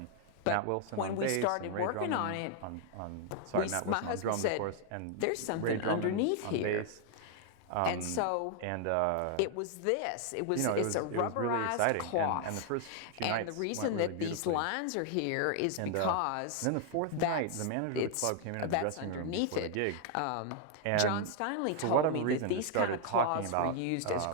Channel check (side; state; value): both; different; correlation 0.00